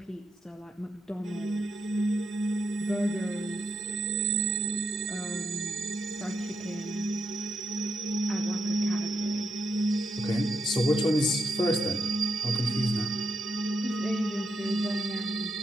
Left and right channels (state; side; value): normal; both; correlation 0.82